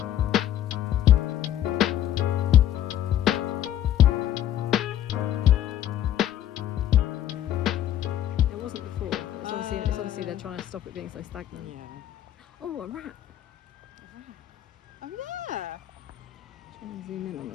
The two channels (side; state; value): right; quieter; 11.4 dB